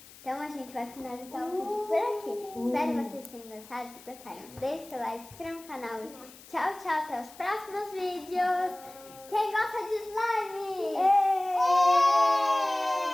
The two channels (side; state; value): left; noise; hiss, 21 dB below the sound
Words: Então a gente vai finalizar o vídeo por aqui. Espero que vocês tenham gostado. Se gostaram, deixe seu like, se inscreva no canal. Tchau, tchau. Até os próximos vídeos. Quem gosta de slime? Êêêê!